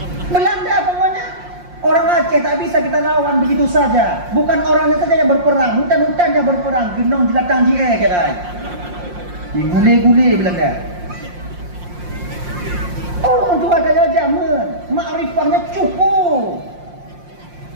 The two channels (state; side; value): late; left; 5.6 ms